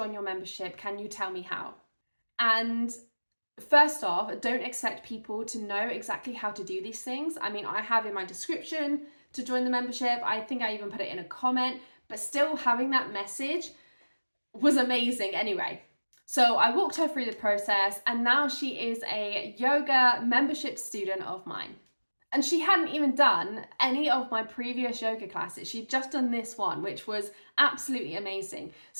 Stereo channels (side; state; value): both; inverted; correlation -1.00